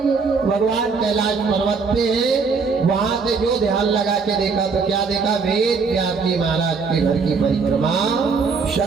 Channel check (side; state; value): left; quieter; 4.9 dB